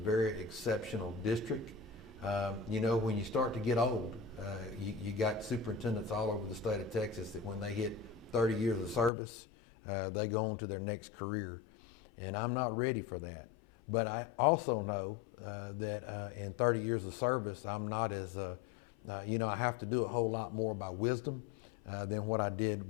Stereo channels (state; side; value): drops out; right; at 9.1 s